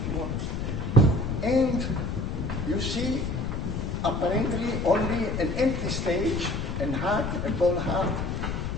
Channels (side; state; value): left; noise; rumble, 2 dB below the sound